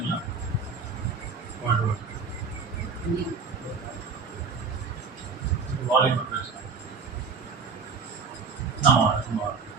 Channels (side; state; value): left; quieter; 5.1 dB